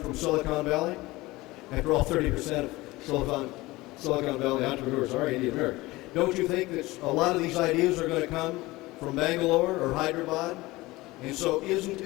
Silicon Valley? After all, 30% of Silicon Valley entrepreneurs are Indian American. Don't you think that a lot of these ideas are going to come from Bangalore or Hyderabad? And so isn't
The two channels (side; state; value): right; quieter; 20.1 dB